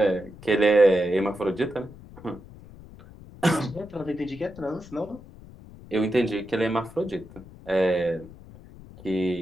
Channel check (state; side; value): noise; left; rumble, 19 dB below the sound